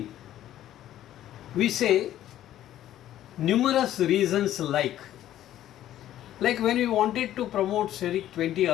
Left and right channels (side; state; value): right; quieter; 12.5 dB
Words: we say numerous reasons like when we wanted to promote Seric-20